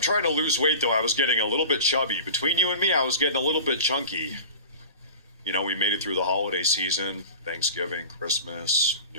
to lose weight though. I was getting a little bit chubby. Between you and me, I was getting a little bit chunky. You know, we made it through the holiday season, Thanksgiving, Christmas,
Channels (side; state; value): both; inverted; correlation -0.35